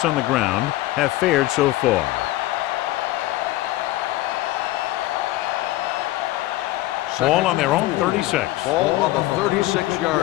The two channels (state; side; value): quieter; right; 16.9 dB